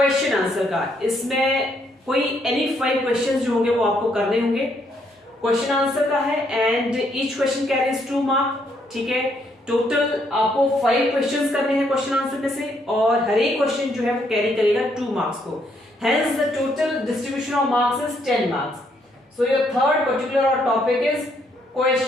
आंसर का। इसमें कोई एनी 5 क्वेश्चंस जो होंगे वो आपको करने होंगे, क्वेश्चन आंसर का है and each question carries 2 mark. ठीक है, टोटल आपको 5 क्वेश्चंस करने हैं क्वेश्चन आंसर में से और हर एक क्वेश्चन जो है वो कैरी करेगा 2 मार्क्स को। Hence the total distribution of marks is 10 marks. So your third particular और topic is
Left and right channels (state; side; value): normal; both; correlation 0.72